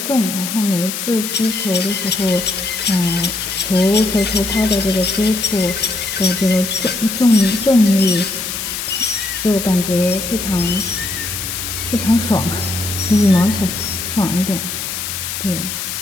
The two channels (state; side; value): noise; left; hiss, 5 dB below the sound